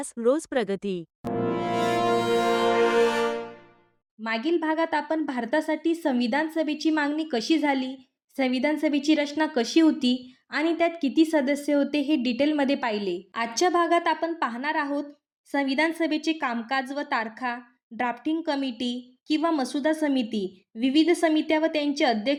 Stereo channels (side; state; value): both; identical; correlation 1.00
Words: रोज प्रगती. मागील भागात आपण भारतासाठी संविधान सभेची मागणी कशी झाली, संविधान सभेची रचना कशी होती आणि त्यात किती सदस्य होते हे डिटेलमध्ये पाहिले. आजच्या भागात आपण पाहणार आहोत संविधान सभेचे कामकाज व तारखा, ड्राफ्टिंग कमिटी किंवा मसुदा समिती, विविध समित्या व त्यांचे